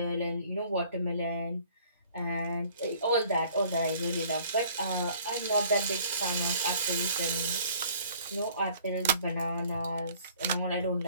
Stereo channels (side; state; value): both; inverted; correlation -0.54